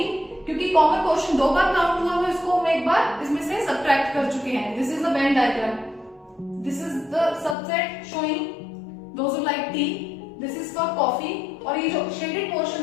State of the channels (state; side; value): drops out; right; at 7.6 s